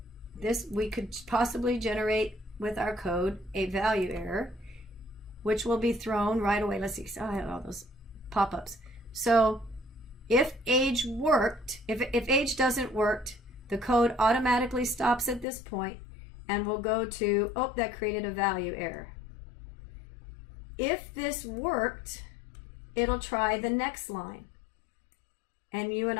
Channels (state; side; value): drops out; right; at 15.5 s